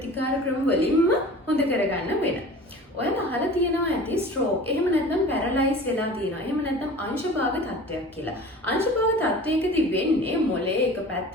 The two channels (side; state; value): both; normal; correlation 0.40